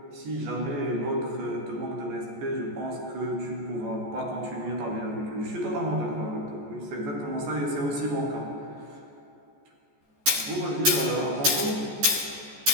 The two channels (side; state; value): left; late; 14 ms